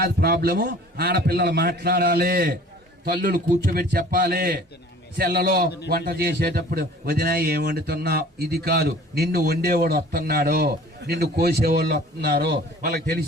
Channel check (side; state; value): both; normal; correlation 0.48